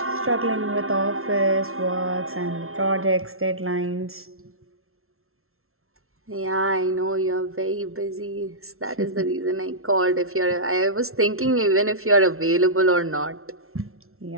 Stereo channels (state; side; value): late; left; 0.62 ms